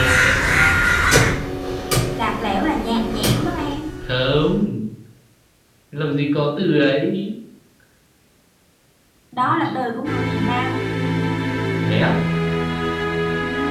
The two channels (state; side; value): identical; both; correlation 1.00